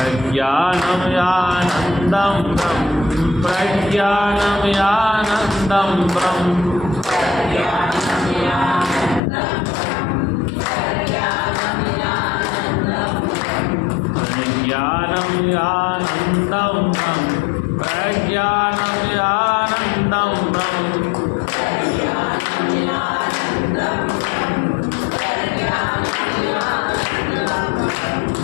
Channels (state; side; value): drops out; right; at 9.2 s